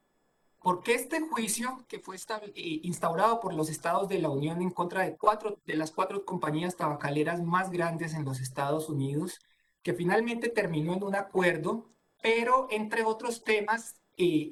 Porque este juicio que fue instaurado por los estados de la Unión en contra de las 4 compañías tabacaleras más grandes en los Estados Unidos, que finalmente terminó en un acuerdo, pero entre otros temas,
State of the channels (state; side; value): identical; both; correlation 1.00